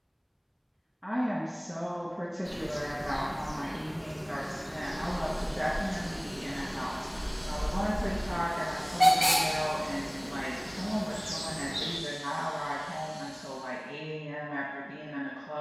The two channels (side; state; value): both; identical; correlation 1.00